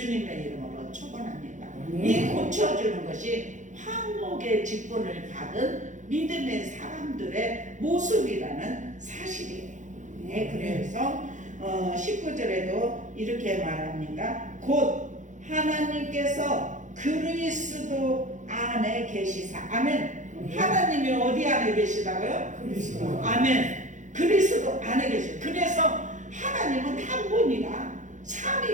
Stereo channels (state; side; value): late; left; 0.36 ms